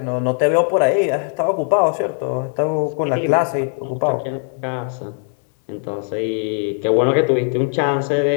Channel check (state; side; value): silent; right; 57 dB below the other